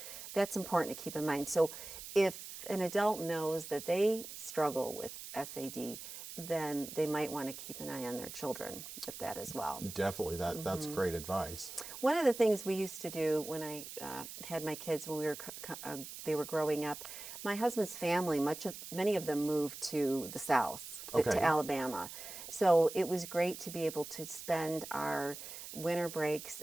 that's important to keep in mind. So if an adult knows that they struggle with SAD, then they might want to keep an eye on their children with that as well. Definitely. That's great advice. One of the things we used to do when I had my kids, when they were growing up, my husband's family, many of them moved to the South, to Alabama. So it was great to be able to spend our winter breaks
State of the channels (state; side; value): noise; right; hiss, 11 dB below the sound